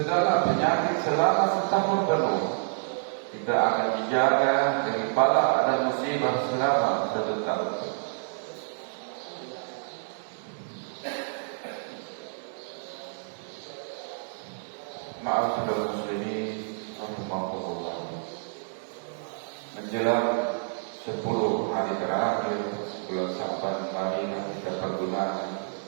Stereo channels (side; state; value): left; silent; digital silence